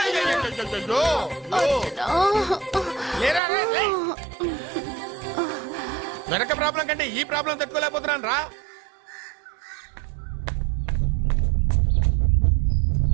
వెనక ప్రాబ్లం కంటే ఈ ప్రాబ్లం తట్టుకోలేకపోతున్నాను రా.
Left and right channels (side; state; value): left; drops out; at 3.4 s